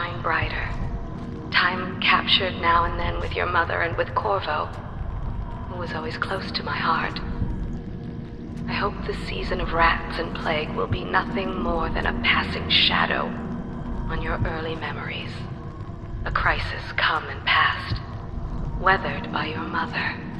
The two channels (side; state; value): both; identical; correlation 1.00